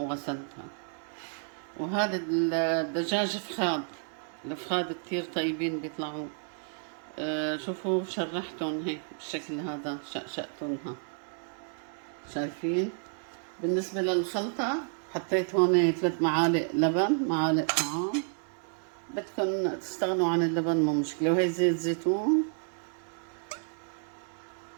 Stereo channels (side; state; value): left; silent; 57 dB below the other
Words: وهذا الدجاج فخاد. الفخاد كتير طيبين بيطلعوا. شوفوا شرحتهم هيك بالشكل هذا، شقشقتهم. شايفين؟ بالنسبة للخلطة حطيت هون 3 معالق لبن، معالق طعام. بدكن تستغنوا عن اللبن مو مشكلة. وهي زيت زيتون،